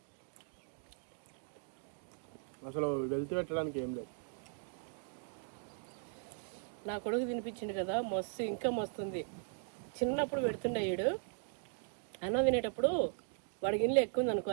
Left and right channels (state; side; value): silent; left; 52 dB below the other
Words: వెళ్తూ పెట్టడానికి ఏం లేదు. నా కొడుకు తినిపించిండు కదా, మస్తు ఇంకా మస్తుంది. చిన్నప్పుడు పెడుతుండే వీడు అన్నం తినేటప్పుడు, వాడికి ఇల్లు ఎక్కువ ఉంది అనుకో,